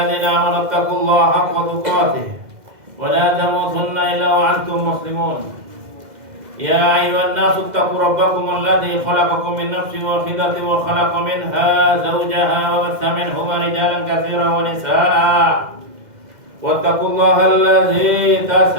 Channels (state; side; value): late; left; 2.0 ms